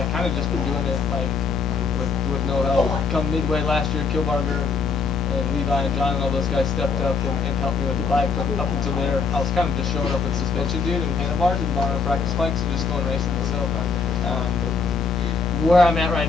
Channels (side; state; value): right; quieter; 5.1 dB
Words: kind of just been doing it like with no help. Come midway last year, Kilbarger and Levi and John and all those guys stepped up and helped me with the bike. But up until there, I was kind of just showing up with suspension, dude, and handlebars and borrowing practice bikes and just going racing. So where I'm at right